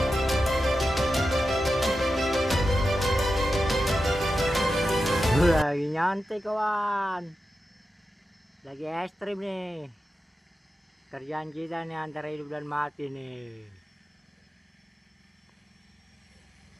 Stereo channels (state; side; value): normal; both; correlation 0.91